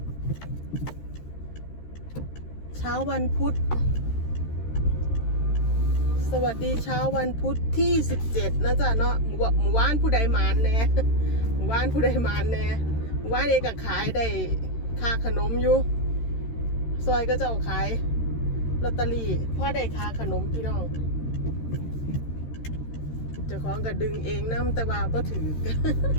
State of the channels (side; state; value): right; late; 13 ms